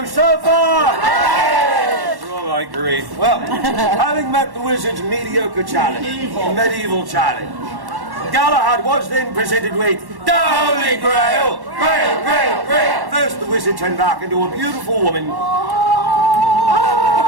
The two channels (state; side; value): late; left; 1.1 ms